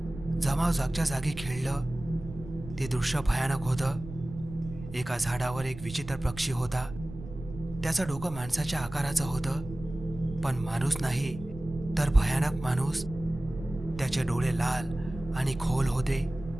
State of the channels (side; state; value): right; noise; rumble, 13 dB below the sound